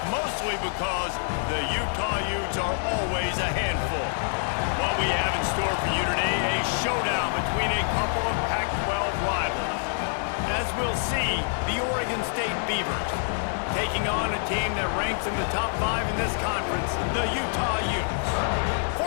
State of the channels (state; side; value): silent; right; 61 dB below the other